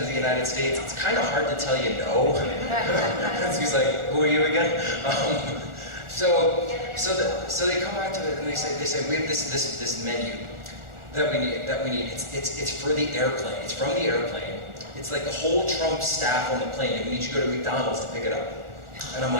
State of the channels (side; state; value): left; late; 1.4 ms